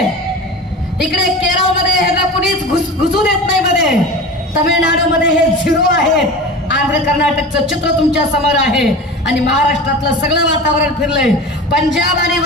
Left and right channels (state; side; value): normal; both; correlation 0.33